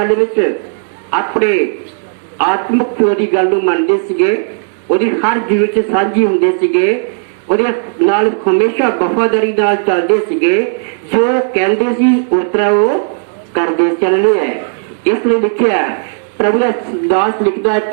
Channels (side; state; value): left; silent; digital silence